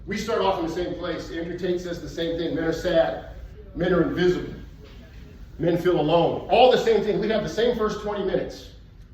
we start off in the same place. Andrew Tate says the same thing. Men are sad. Men are invisible. Men feel alone. All the same thing. We have the same first 20 minutes.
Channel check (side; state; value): both; identical; correlation 1.00